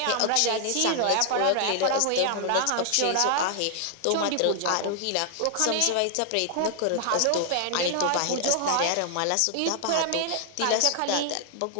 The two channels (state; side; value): different; both; correlation 0.00